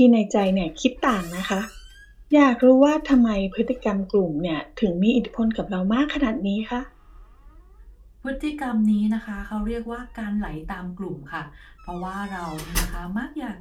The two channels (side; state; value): both; identical; correlation 1.00